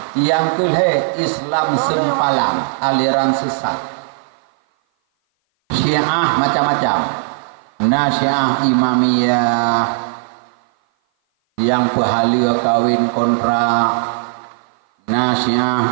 yang ketiga Islam sempalan aliran sesat. Syiah macam-macam. Nah Syiah Imamiyah yang pahala kawin kontrak.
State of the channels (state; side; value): silent; left; 56 dB below the other